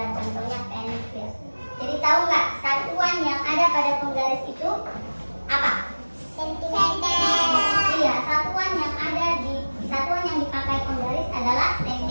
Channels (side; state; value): both; inverted; correlation -1.00